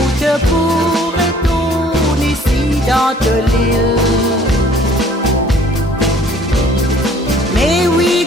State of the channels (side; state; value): both; normal; correlation 0.55